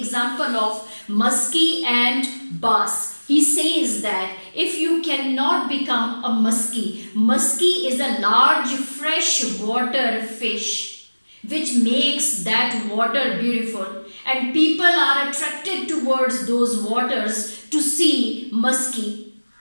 of muskie and bass. He says that if you cannot become a muskie is a large freshwater fish which makes that water beautiful. and people are attracted towards those waters to see musky.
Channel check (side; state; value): both; inverted; correlation -1.00